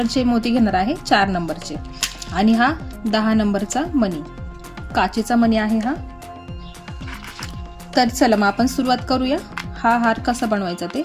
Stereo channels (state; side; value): identical; both; correlation 1.00